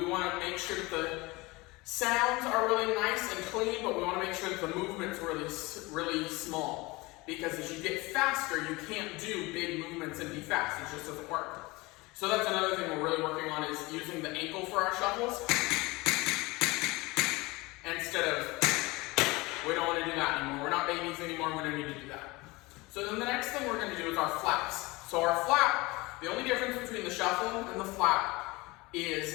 want to make sure that the sounds are really nice and clean, but we want to make sure that the movement's really small. Because as you get faster, you can't do big movements and be fast. It just doesn't work. So that's another thing we're really working on, is using the ankle for our shuffles. Instead of, we don't want to do that anymore. We're not babies anymore. We don't need to do that. So then the next thing we're going to do is our flaps. So our flap, the only difference between the shuffle and the flap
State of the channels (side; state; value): right; quieter; 22.8 dB